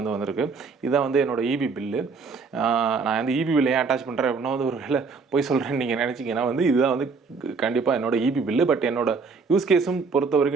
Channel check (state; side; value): quieter; left; 4.8 dB